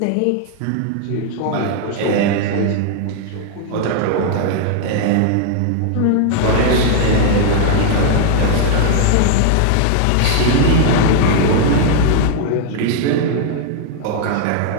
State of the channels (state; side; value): different; both; correlation 0.00